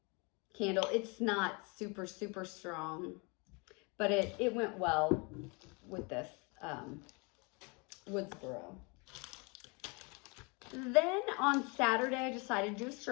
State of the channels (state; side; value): quieter; right; 30.6 dB